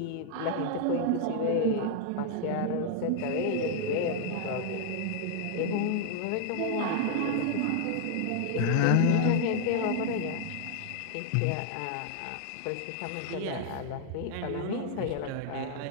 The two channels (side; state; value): both; different; correlation 0.00